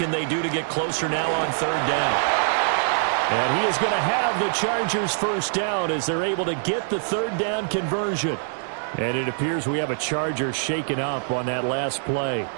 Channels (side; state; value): left; silent; 59 dB below the other